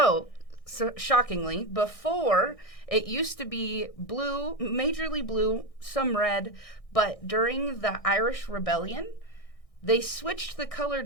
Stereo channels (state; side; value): late; right; 1.6 ms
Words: shockingly, before it used to be blue, majorly blue, some red, but during the Irish Rebellion, they switched the color